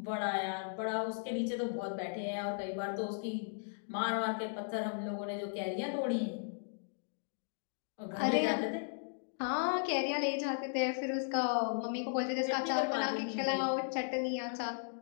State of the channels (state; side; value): silent; right; digital silence